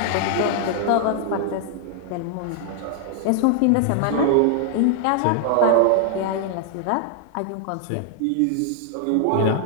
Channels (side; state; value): both; different; correlation 0.00